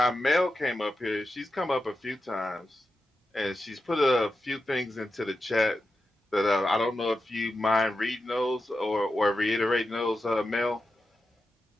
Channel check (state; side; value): normal; both; correlation 0.90